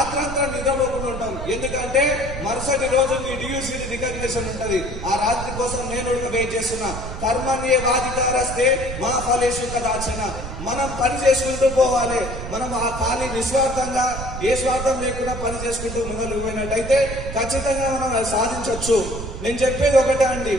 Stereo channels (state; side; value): noise; right; rumble, 8 dB below the sound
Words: నిద్రపోకుండా ఉంటాం. ఎందుకంటే మరుసటి రోజు మీ డియూసీ రికగ్నిషన్ ఉంటది. ఆ రాత్రి కోసం నేను వెయిట్ చేస్తున్నా. కర్మణ్యే వాదితారస్తే మా ఫలేషు కదాచన. మనం పని చేసుకుంటూ పోవాలి. మనం ఆ ఖాళీ నిస్వార్థంగా ఏ స్వార్థం లేకుండా పని చేసుకుంటూ ముందుకు పోయినట్టయితే ఖచ్చితంగా మనం సాధించవచ్చు. నేను చెప్పేది ఒకటే అండి,